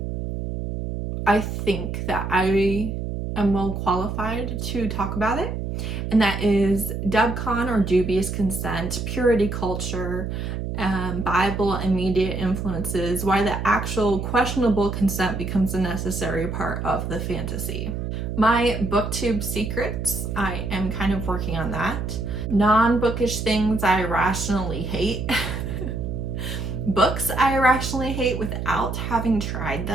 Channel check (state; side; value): noise; right; hum, 4 dB below the sound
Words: I think that I am well qualified to talk about it. And that is dubcon or dubious consent, purity culture, Bible and media influences, why the actual questionable consent becomes a necessary part of the fantasy. My booktube secrets, I am kind of working on that. Non-bookish things I irrationally hate. Books I irrationally hate without having tried